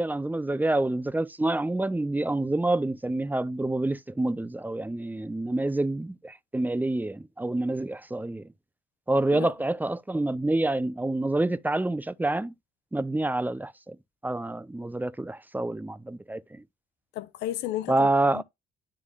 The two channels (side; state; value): both; normal; correlation 0.92